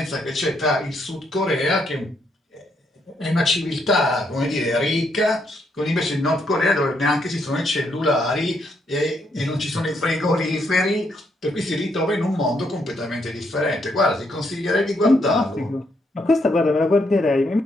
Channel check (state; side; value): normal; both; correlation 0.75